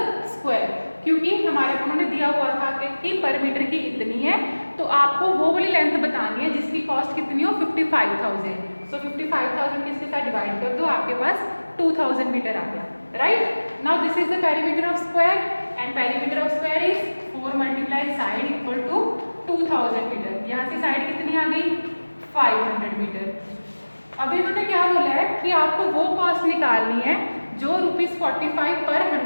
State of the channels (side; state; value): both; inverted; correlation -1.00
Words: स्क्वायर। क्योंकि हमारे उन्होंने दिया हुआ था कि पर मीटर की इतनी है, तो आपको वो वाली लेंथ बतानी है जिसकी कॉस्ट कितनी हो, 55,000। सो 55,000 किसके साथ डिवाइड कर दो, आपके पास 2000 मीटर आ गया, right. Now this is the perimeter of square and perimeter of square is 4 multiply side equal to 2000 metre. यहाँ से साइड कितनी आ गई, 500 मीटर। अभी इन्होंने क्या बोला है कि आपको वो कॉस्ट निकालनी है जो ₹45 पर